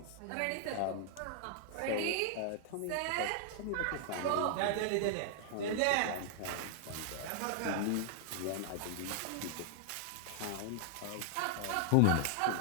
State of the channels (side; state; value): both; different; correlation 0.00